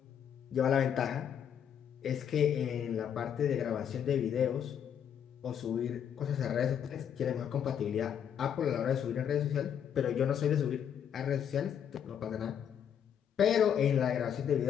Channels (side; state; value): right; quieter; 8.6 dB